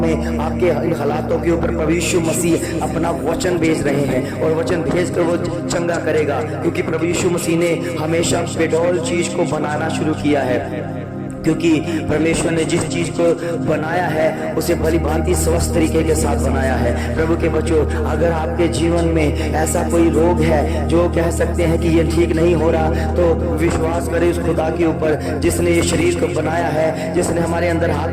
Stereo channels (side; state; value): both; identical; correlation 1.00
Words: में, आपके इन हालातों के ऊपर प्रभु यीशु मसीह अपना वचन भेज रहे हैं, और वचन भेज कर वो चंगा करेगा, क्योंकि प्रभु यीशु मसीह ने हमेशा बेडौल चीज को बनाना शुरू किया है। क्योंकि परमेश्वर ने जिस चीज को बनाया है उसे भली भांति स्वस्थ तरीके के साथ बनाया है। प्रभु के बच्चों, अगर आपके जीवन में ऐसा कोई रोग है जो कह सकते हैं कि ये ठीक नहीं हो रहा, तो विश्वास करें उस खुदा के ऊपर जिसने ये शरीर को बनाया है, जिसने हमारे अंदर